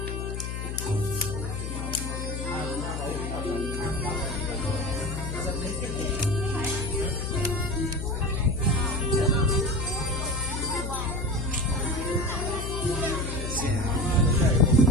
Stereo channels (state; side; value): noise; left; hum, 4 dB below the sound